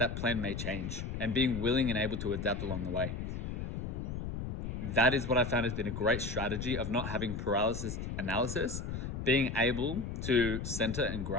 plan may change and being willing and able to adapt along the way. That is what I found has been a great strategy of not having paralysis analysis, being able to center and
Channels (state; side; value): noise; left; rumble, 4 dB below the sound